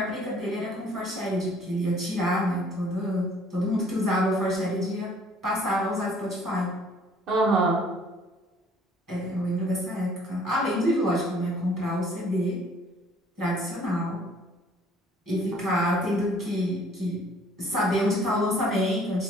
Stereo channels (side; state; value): both; normal; correlation 0.58